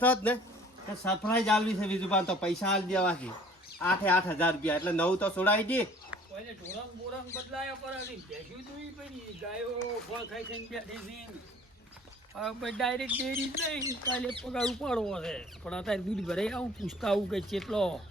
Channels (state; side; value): normal; both; correlation 0.52